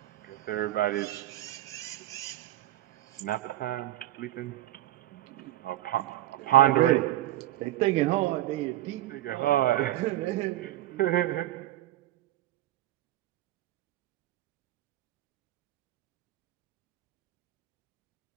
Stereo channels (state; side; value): quieter; left; 14.7 dB